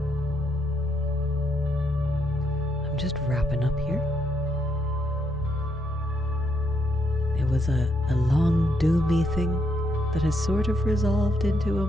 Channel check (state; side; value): normal; both; correlation 0.76